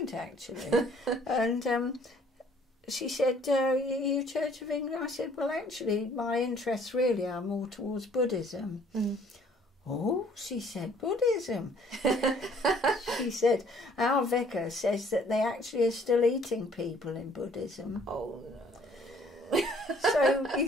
actually." And she said, you Church of England? I said, well, actually, my interests really are more towards Buddhism. Mm. Oh, she said, Buddhism. She said, our vicar says that they actually are still eating people in Buddhism. Oh, no. So you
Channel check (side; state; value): both; normal; correlation 0.59